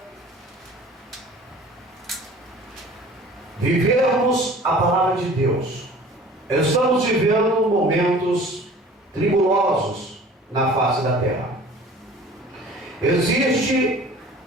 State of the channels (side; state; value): both; normal; correlation 0.46